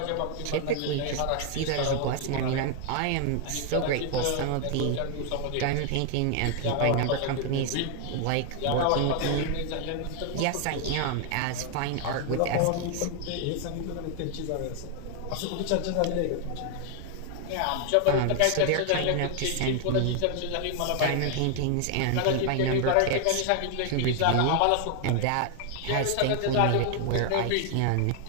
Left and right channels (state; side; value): different; both; correlation 0.00